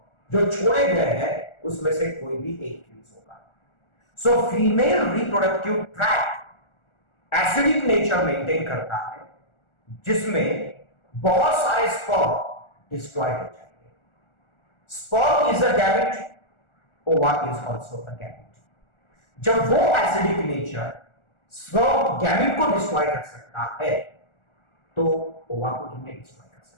जो छोड़े गए हैं उसमें से कोई भी एक फ्यूज होगा। So female reproductive tract acidic nature maintain करता है, जिसमें बहुत सारे स्पर्म डिस्ट्रॉय हो जाएंगे। स्पर्म इज अ गैमेट, ओवा इज आल्सो अ गैमेट। जब वो एसिडिक नेचर स्पर्म गैमेट को डिस्ट्रॉय कर सकता है तो ओवा को कितने डिस्ट्रॉय कर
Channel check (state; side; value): late; right; 1.4 ms